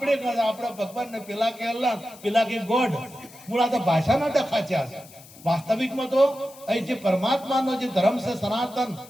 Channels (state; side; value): noise; left; hiss, 21 dB below the sound